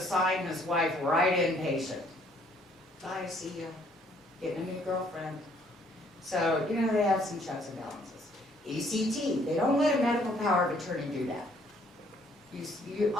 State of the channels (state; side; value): normal; both; correlation 0.64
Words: his wife right inpatient. Bye, see ya. Getting a new girlfriend. So, they have some checks and balances. ECT, they don't let a medical power of attorney do that. You